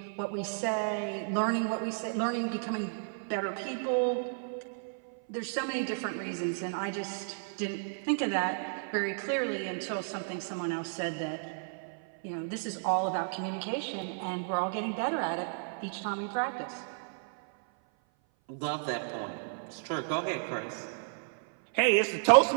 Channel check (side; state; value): left; silent; 56 dB below the other